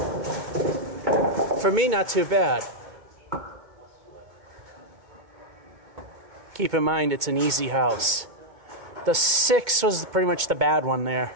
For me, not too bad. Keep in mind, it's an easy house. The 6 was pretty much the bad one there.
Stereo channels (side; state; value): left; late; 2.1 ms